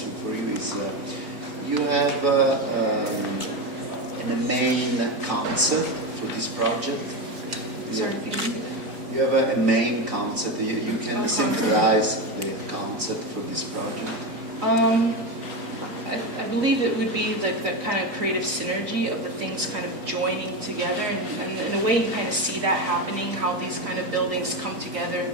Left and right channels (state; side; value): late; left; 4.2 ms